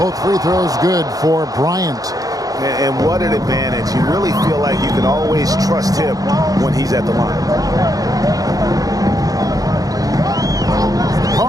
free throws good for Bryant. And what an advantage. You really feel like you can always trust him when he's at the line.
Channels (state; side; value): late; left; 0.18 ms